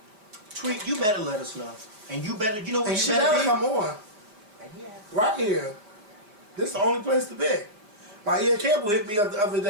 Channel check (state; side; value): late; left; 4.9 ms